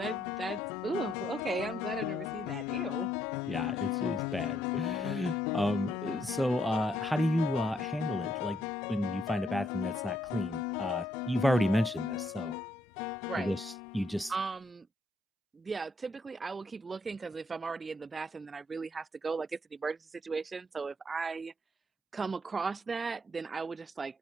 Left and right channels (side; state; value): both; normal; correlation 0.72